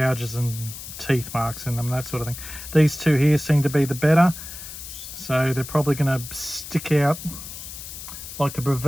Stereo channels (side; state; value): left; noise; hiss, 11 dB below the sound